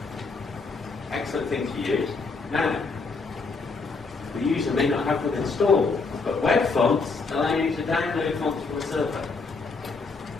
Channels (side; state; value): right; quieter; 4.2 dB